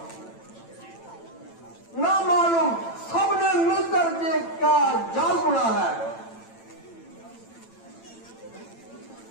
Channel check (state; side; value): late; right; 9.0 ms